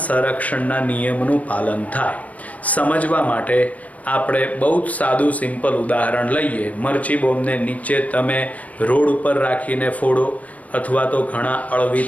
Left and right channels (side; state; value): right; late; 0.069 ms